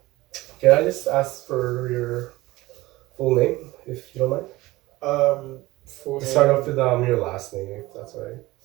can I just ask for your full name, if you don't mind? Um, Full To start name. off with your last name, if that's all right.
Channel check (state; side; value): quieter; left; 19.2 dB